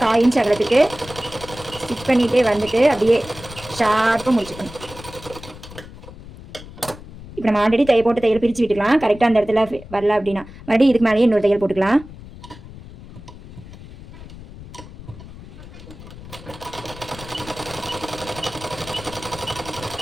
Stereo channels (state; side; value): noise; left; rumble, 16 dB below the sound